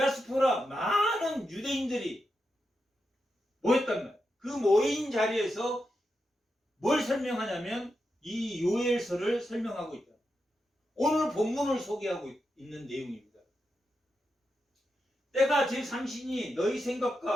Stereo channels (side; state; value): both; normal; correlation 0.87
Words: 많은 유대인들이 모였단 말이에요. 그 모인 자리에서 뭘 설명하냐면 이 요엘서를 설명하고 있다. 오늘 본문을 소개하고 있는 내용입니다. 때가 제3신이 너희